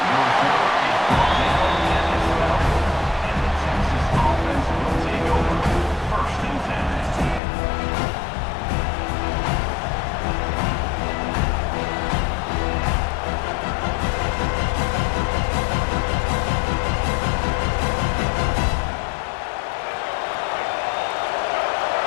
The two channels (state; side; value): drops out; right; at 7.4 s